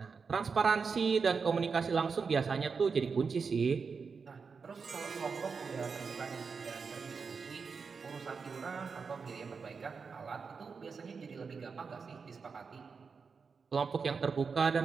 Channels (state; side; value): quieter; left; 5.3 dB